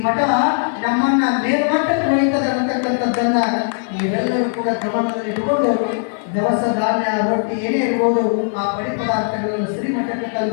ಮಠ ನಮ್ಮನ್ನ ಮೇಲ್ಮಟ್ಟಕ್ಕೆ ಹೊಯ್ತದೆ ಅಂತಕ್ಕಂಥದ್ದನ್ನ ನೀವೆಲ್ಲರೂ ಕೂಡ ಗಮನದಲ್ಲಿ ಇಟ್ಕೊಂಡು ದವಸ ಧಾನ್ಯ ರೊಟ್ಟಿ ಏನೇ ಇರ್ಬೋದು ಆ ಪಡಿ ಪದಾರ್ಥಗಳನ್ನು ಶ್ರೀಮಠಕ್ಕೆ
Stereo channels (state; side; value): silent; right; 62 dB below the other